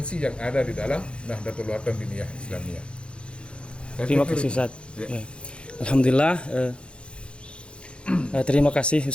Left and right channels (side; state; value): right; late; 0.057 ms